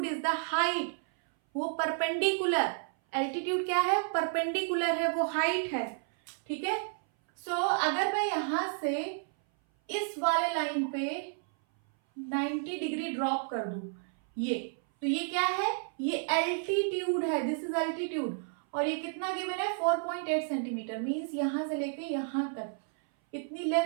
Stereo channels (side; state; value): left; silent; 57 dB below the other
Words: इज द हाइट, वो परपेंडिकुलर, एल्टीट्यूड क्या है, परपेंडिकुलर है, वो हाइट है। ठीक है, सो अगर मैं यहां से इस वाले लाइन पे 90 डिग्री ड्रॉप कर दूं, ये तो ये क्या है, ये एल्टीट्यूड है, दिस इज एल्टीट्यूड। और ये कितना गिवन है 4.8 सेंटीमीटर, मीन्स यहां से लेके यहां तक इतनी